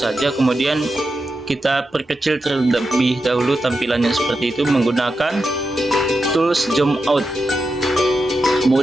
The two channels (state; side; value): normal; both; correlation 0.88